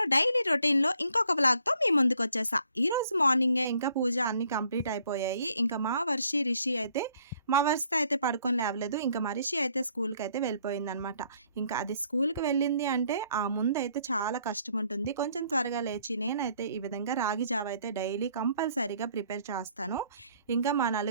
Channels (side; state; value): both; inverted; correlation -0.64